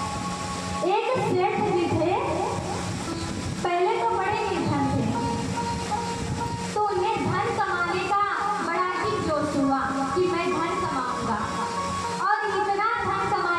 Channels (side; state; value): both; identical; correlation 1.00